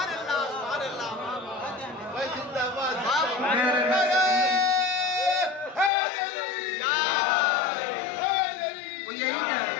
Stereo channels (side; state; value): right; drops out; at 5.9 s